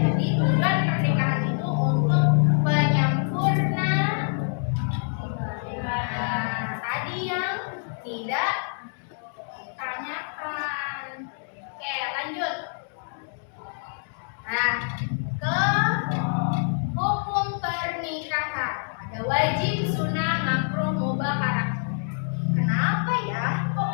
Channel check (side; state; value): right; silent; digital silence